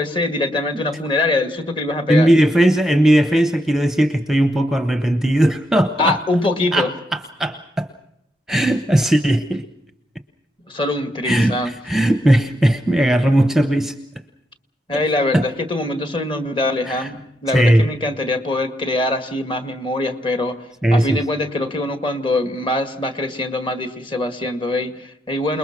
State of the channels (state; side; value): normal; both; correlation 0.81